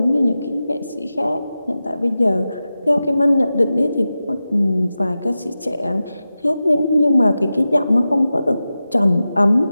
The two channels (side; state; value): both; inverted; correlation -0.93